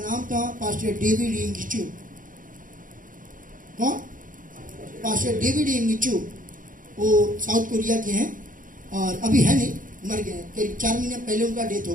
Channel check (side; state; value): left; late; 0.39 ms